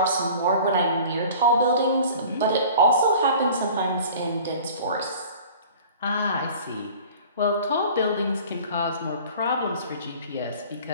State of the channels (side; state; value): both; inverted; correlation -0.44